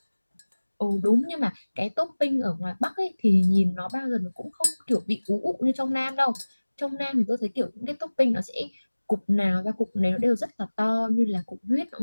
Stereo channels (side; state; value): both; inverted; correlation -1.00